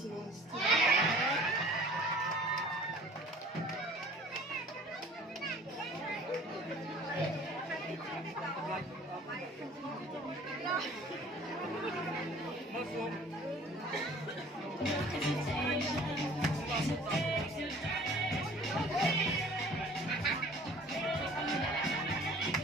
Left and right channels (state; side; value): normal; both; correlation 0.49